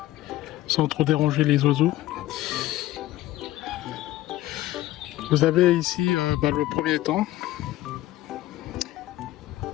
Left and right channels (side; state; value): right; quieter; 15.4 dB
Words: sans trop déranger les oiseaux. Vous avez ici le premier étang